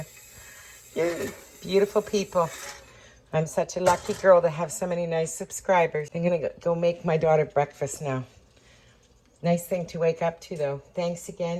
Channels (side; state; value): both; identical; correlation 1.00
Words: You're beautiful people. I'm such a lucky girl to have so many nice subscribers. I'm going to go make my daughter breakfast now. Nice thing to wake up to, though. Thanks